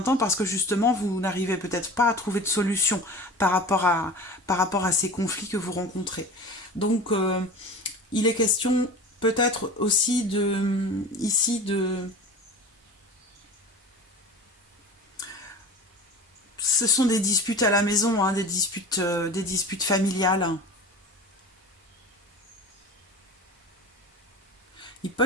temps parce que justement, vous n'arrivez peut-être pas à trouver de solution par rapport à ces conflits que vous rencontrez. Donc, il est question peut-être aussi ici ce sont des disputes à la maison, hein, des disputes familiales. Il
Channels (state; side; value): normal; both; correlation 0.35